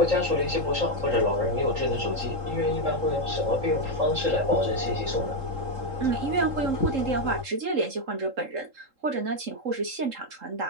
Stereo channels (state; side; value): late; left; 3.7 ms